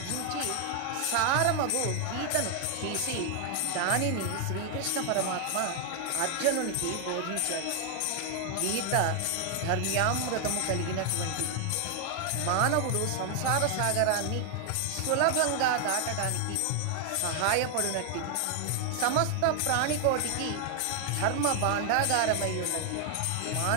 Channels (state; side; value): different; both; correlation 0.00